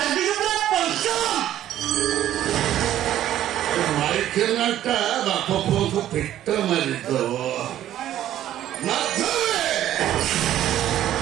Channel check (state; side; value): quieter; left; 12.2 dB